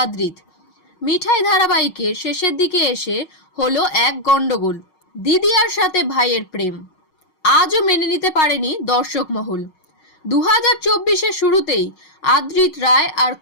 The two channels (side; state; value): right; late; 6.4 ms